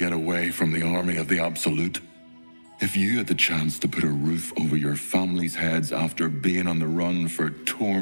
away from the army of the Absolute. If you had the chance to put a roof over your family's heads after being on the run for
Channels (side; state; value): both; inverted; correlation -1.00